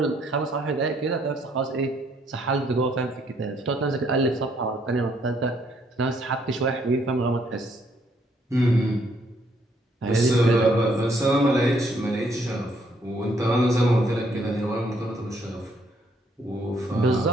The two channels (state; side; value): normal; both; correlation 0.69